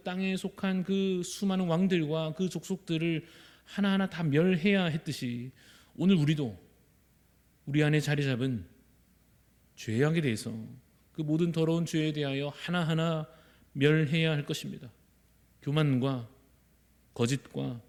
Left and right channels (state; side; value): identical; both; correlation 1.00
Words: 땅에 속한 그 수많은 왕들과 그 족속들을 하나하나 다 멸해야 했듯이, 오늘 우리도 우리 안에 자리 잡은 죄악에 대해서, 그 모든 더러운 죄에 대하여 하나하나 멸해야 할 것입니다. 교만과 거짓과